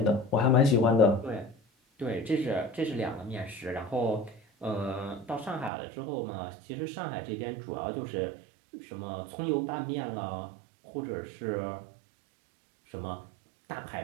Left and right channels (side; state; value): left; drops out; at 5.7 s